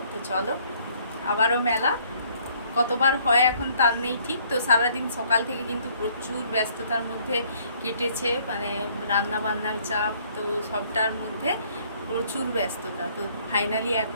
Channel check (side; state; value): both; inverted; correlation -0.62